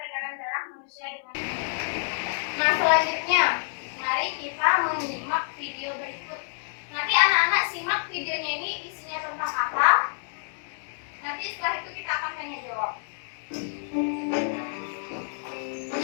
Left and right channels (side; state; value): right; silent; digital silence